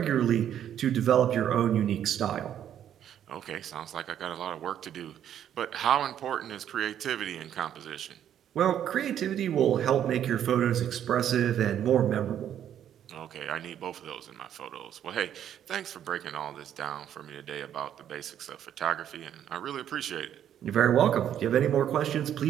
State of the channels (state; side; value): quieter; left; 10.1 dB